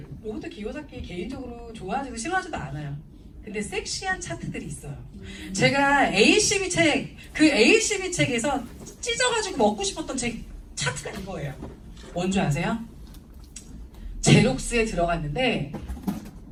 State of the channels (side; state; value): both; identical; correlation 1.00